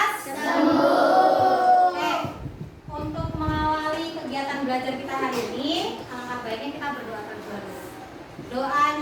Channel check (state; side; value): identical; both; correlation 1.00